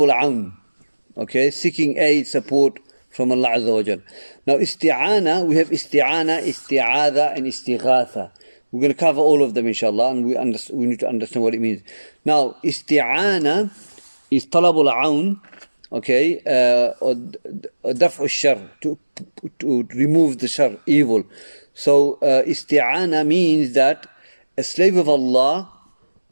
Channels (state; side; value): inverted; both; correlation -1.00